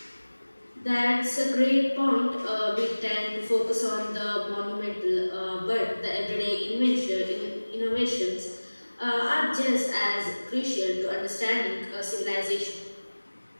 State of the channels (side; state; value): both; inverted; correlation -1.00